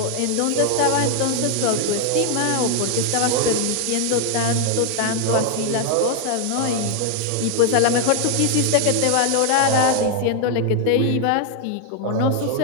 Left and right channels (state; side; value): different; both; correlation 0.01